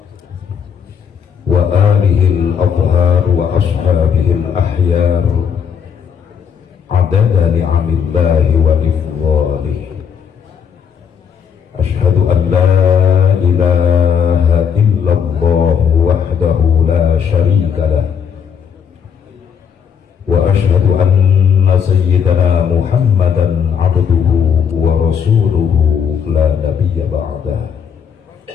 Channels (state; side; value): quieter; right; 7.4 dB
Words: wa alihil adhar wa ashabihil ahyar adada ni'amillahi wa ifdhalih. Ashhadu an la ilaha illallah wahdahu la sharika lah wa ashhadu anna sayyidana Muhammadan abduhu wa rasuluhu la nabiyya ba'dah.